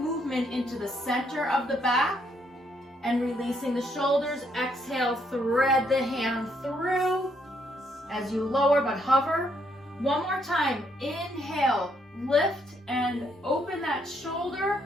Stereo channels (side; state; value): both; normal; correlation 0.73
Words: into the center of the back and releasing the shoulders. Exhale, thread the hand through as you lower but hover. One more time. Inhale, lift and open that shoulder.